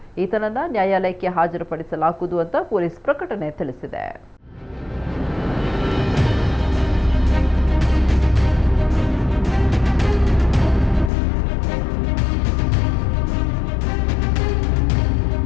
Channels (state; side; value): drops out; right; at 11.1 s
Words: ಈತನನ್ನ ನ್ಯಾಯಾಲಯಕ್ಕೆ ಹಾಜರುಪಡಿಸಲಾಗುವುದು ಅಂತ ಪೊಲೀಸ್ ಪ್ರಕಟಣೆ ತಿಳಿಸಿದೆ.